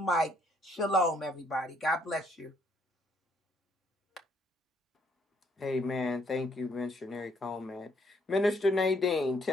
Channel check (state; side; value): normal; both; correlation 0.69